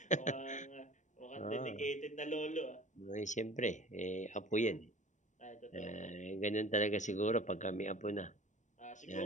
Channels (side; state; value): right; late; 0.35 ms